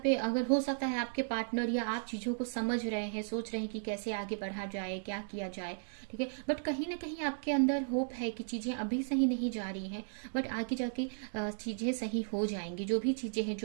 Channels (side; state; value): left; silent; digital silence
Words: पे अगर हो सकता है आपके पार्टनर या आप चीजों को समझ रहे हैं, सोच रहे हैं कि कैसे आगे बढ़ा जाए, क्या किया जाए। ठीक है। बट कहीं ना कहीं आपके अंदर होप है कि चीजें अभी सही नहीं जा रही हैं, बट आगे जाके चीजें सही हो जाएंगी। जो भी चीजें हैं,